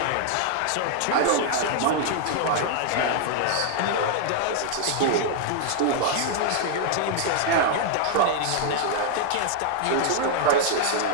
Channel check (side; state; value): both; different; correlation 0.00